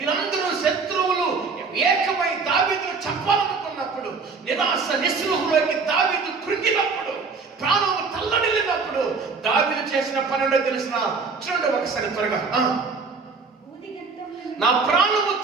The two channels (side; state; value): left; quieter; 4.7 dB